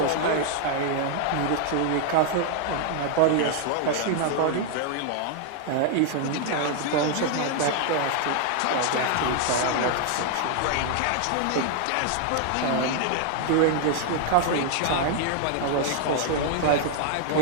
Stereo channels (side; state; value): both; different; correlation 0.00